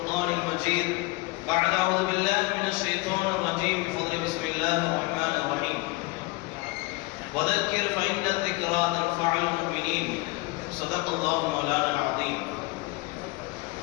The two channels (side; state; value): right; quieter; 23.2 dB